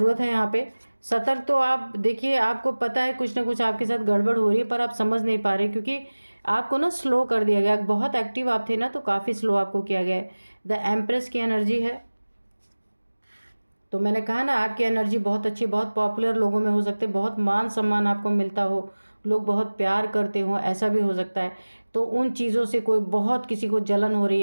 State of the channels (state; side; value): inverted; both; correlation -1.00